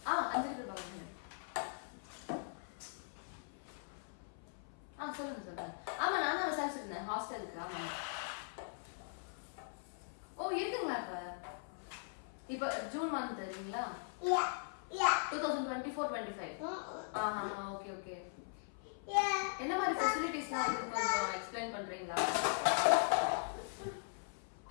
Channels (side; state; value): right; silent; 51 dB below the other